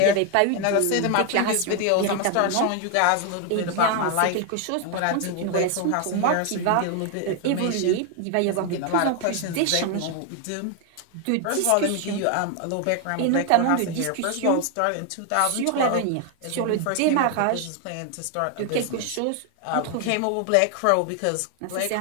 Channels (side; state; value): both; different; correlation 0.01